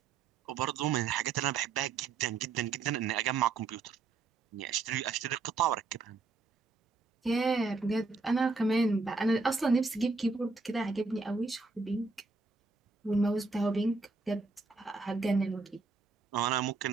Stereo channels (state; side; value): quieter; left; 4.1 dB